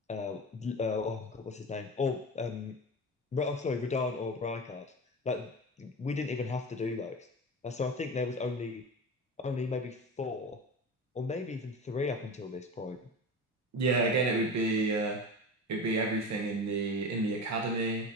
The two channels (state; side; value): normal; both; correlation 0.29